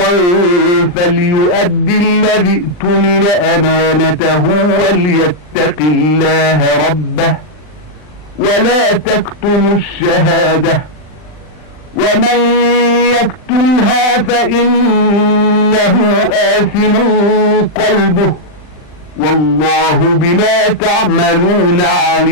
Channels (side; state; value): right; late; 39 ms